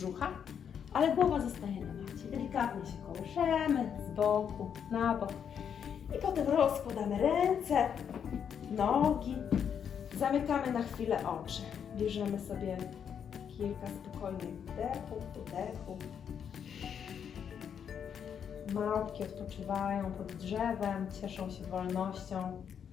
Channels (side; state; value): right; quieter; 7.9 dB